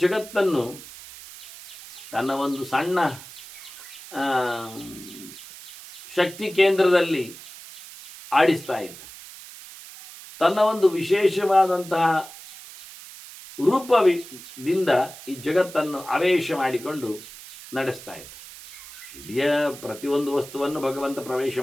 ಜಗತ್ತನ್ನು ತನ್ನ ಒಂದು ಸಣ್ಣ ಶಕ್ತಿ ಕೇಂದ್ರದಲ್ಲಿ ಆಡಿಸ್ತಾ ಇದ್ದ. ತನ್ನ ಒಂದು ವಿಶೇಷವಾದಂತಹ ರೂಪದಿಂದ ಈ ಜಗತ್ತನ್ನು ಆವೇಶ ಮಾಡಿಕೊಂಡು ನಡೆಸ್ತಾ ಇದ್ದ. ಇಡೀ ಪ್ರತಿಯೊಂದು ವಸ್ತುವನ್ನು ಭಗವಂತ ಪ್ರವೇಶ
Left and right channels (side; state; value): right; noise; hiss, 16 dB below the sound